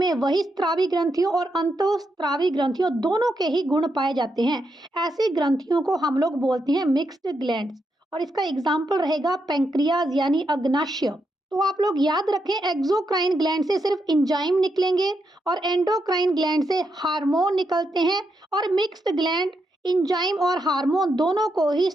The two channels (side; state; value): both; normal; correlation 0.82